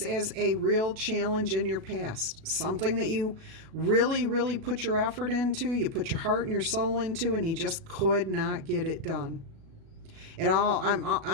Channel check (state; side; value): late; left; 37 ms